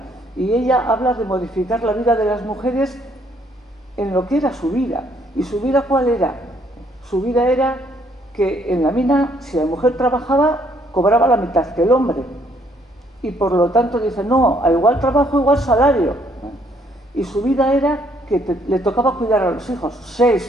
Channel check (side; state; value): both; normal; correlation 0.67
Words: y ella habla de modificar la vida de las mujeres en lo que era su vida. ¿Y su vida cuál era? Su vida era que en la mina, si la mujer trabajaba, cobraba la mitad que el hombre. Y por lo tanto dice, no, a igual trabajo, igual salario. Y su vida era que le tocaba cuidar a los hijos.